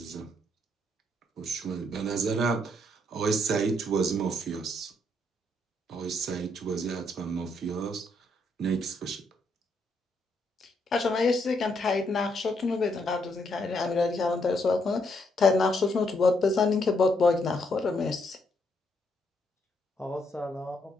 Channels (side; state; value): both; normal; correlation 0.74